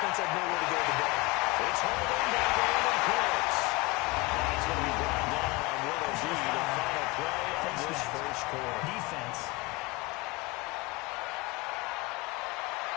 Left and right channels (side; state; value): right; quieter; 24.0 dB